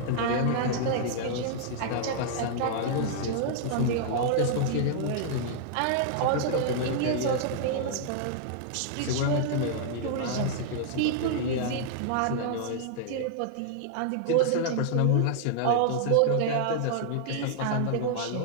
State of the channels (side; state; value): both; different; correlation -0.01